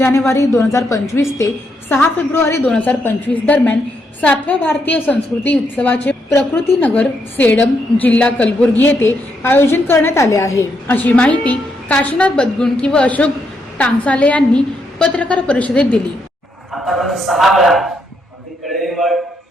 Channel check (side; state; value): both; normal; correlation 0.78